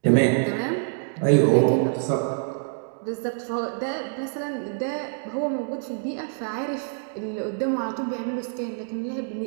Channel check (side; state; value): left; silent; digital silence